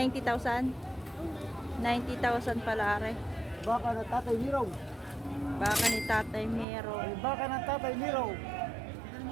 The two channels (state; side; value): drops out; left; at 6.7 s